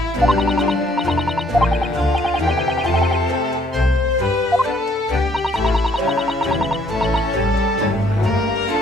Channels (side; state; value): both; normal; correlation 0.64